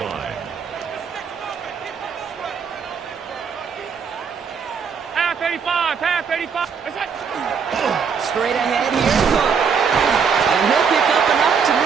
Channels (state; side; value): quieter; left; 6.3 dB